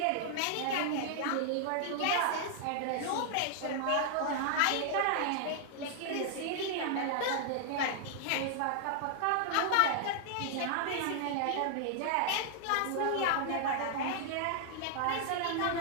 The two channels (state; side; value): different; both; correlation -0.01